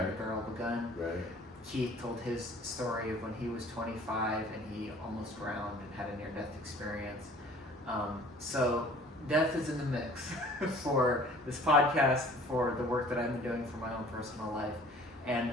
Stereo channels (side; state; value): both; normal; correlation 0.50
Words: the barrel of a gun. Right. Keith told his story of when he was 25 and he almost drowned and had a near-death experience. So death is in the mix for this podcast, for the work that I've been doing for my own personal life. And